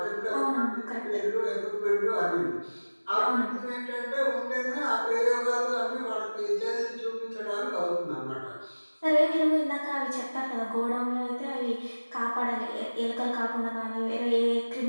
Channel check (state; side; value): inverted; both; correlation -1.00